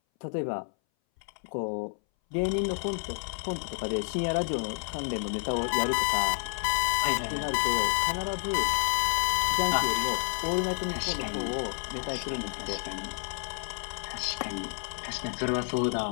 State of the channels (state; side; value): silent; right; 58 dB below the other